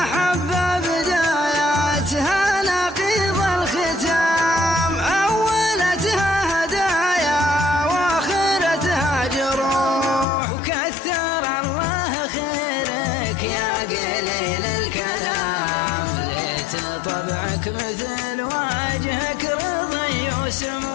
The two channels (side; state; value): right; drops out; at 10.2 s